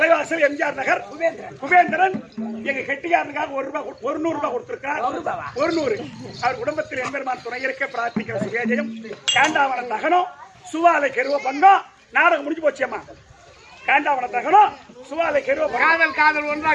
எம்ஜிஆர் நகர் குபேந்திரன் எங்க கெட்டியாரனுக்காக ₹100 கொடுத்திருக்கார். 100 அவர் குடும்பத்தில் எம்பெருமான் துணை இருக்க பிரார்த்திக்கிற சுவேஜயம். காண்டாவன தகனம் சுவாலை கெருவ பங்கம். நாடகம் முடிஞ்சு போச்சியம்மா. காண்டாவன தகனம் சுவாலை கெருவ காதல் ஒன்றா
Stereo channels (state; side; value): identical; both; correlation 1.00